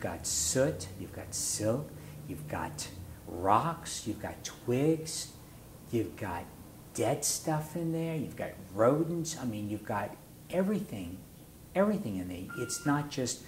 soot, you've got silk, you've got rocks, you've got twigs, you've got dead stuff in there, you've got rodents. I mean, you've got everything in there. It's not just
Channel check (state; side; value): identical; both; correlation 1.00